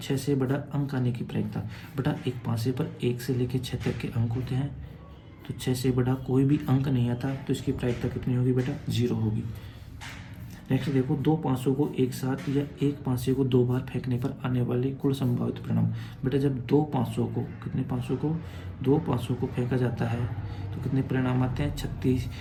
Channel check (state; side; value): identical; both; correlation 1.00